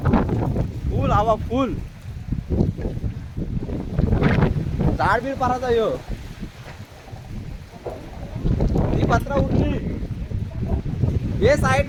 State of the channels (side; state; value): both; identical; correlation 1.00